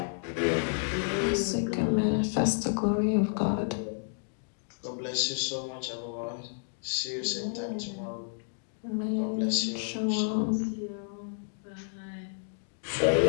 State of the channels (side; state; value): right; silent; digital silence